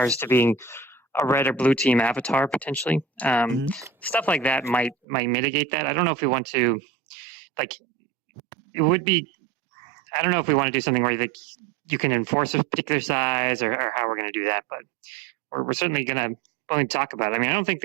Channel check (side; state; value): left; drops out; at 5.0 s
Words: to being a red or blue team avatar potentially. Stuff like that might mitigate that. I don't know if we want to, it would be, I don't know if we want to do something where you can enforce a particular size or how we're going to do that, but we're certainly willing to talk about it. I mean, I don't think